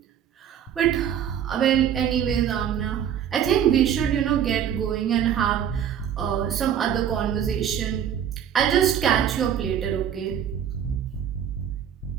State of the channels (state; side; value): quieter; left; 9.2 dB